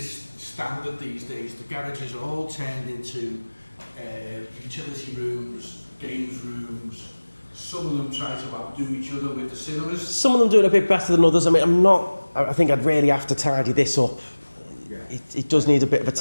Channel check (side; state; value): both; inverted; correlation -1.00